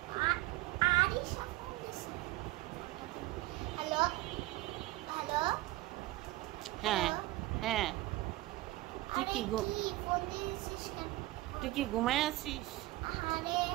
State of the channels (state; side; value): quieter; left; 18.0 dB